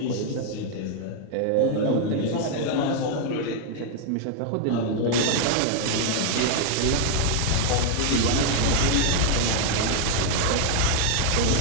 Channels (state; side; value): different; both; correlation 0.00